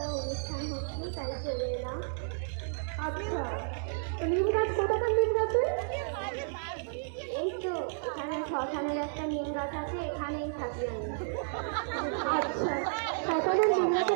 শ্মশানের একটা নিম গাছ আছে, এখানেই থাকি আমি। আচ্ছা, শ্মশানের নিম গাছে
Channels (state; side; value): silent; left; digital silence